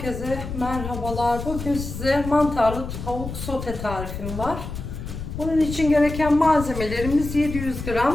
merhabalar. Bugün size mantarlı tavuk sote tarifim var. Bunun için gereken malzemelerimiz 700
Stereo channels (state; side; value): noise; left; rumble, 8 dB below the sound